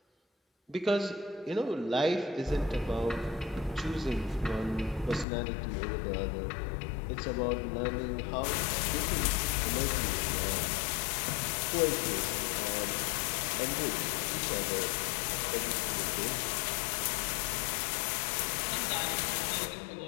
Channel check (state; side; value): drops out; right; at 5.2 s